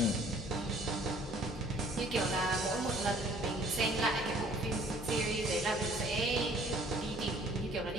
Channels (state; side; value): normal; both; correlation 0.56